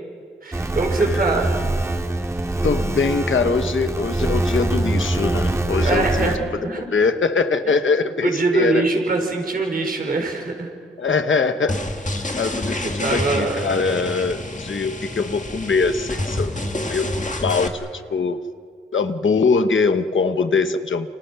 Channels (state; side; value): normal; both; correlation 0.57